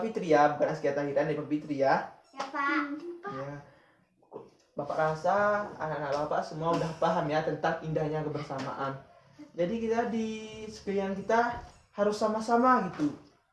Fitri ya, bukan Askia Tahira, Nadipa Fitri ya. Ya Pak. Ya. Bapak rasa anak-anak Bapak semua udah paham ya tentang indahnya kebersamaan. Jadi kita di sekalian kita harus sama-sama gitu.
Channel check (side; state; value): both; identical; correlation 1.00